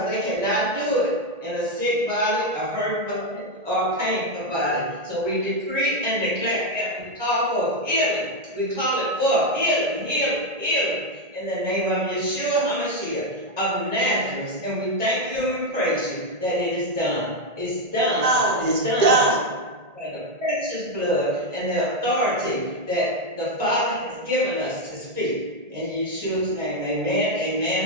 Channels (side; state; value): left; late; 1.8 ms